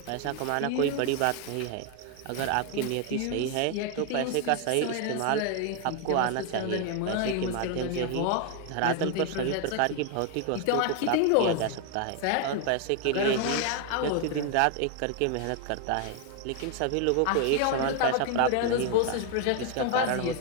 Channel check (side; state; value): both; different; correlation 0.01